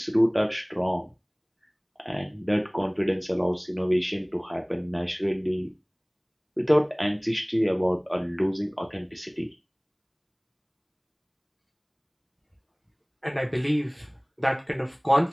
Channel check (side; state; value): both; identical; correlation 1.00